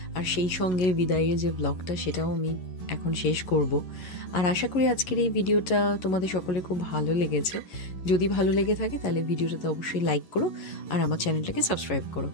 আর সেই সঙ্গে বিদায়ের যে ব্লগটা সেটাও আমি এখন শেষ করব। আর আশা করি আজকের এই ভিডিওটা তোমাদের সকলের খুব ভালো লেগেছে। যদি ভালো লেগে থাকে তাহলে ভিডিওটাতে অবশ্যই লাইক করো আর আমার চ্যানেলটাকে সাবস্ক্রাইব করো।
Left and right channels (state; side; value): late; right; 11 ms